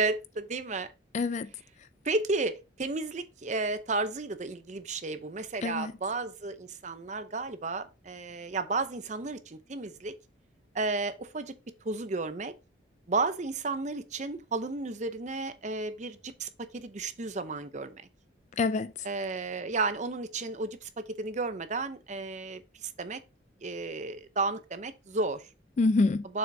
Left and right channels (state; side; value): normal; both; correlation 0.13